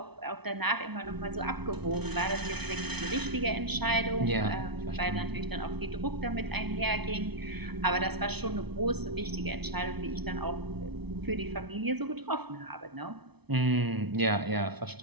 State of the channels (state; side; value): late; left; 0.99 ms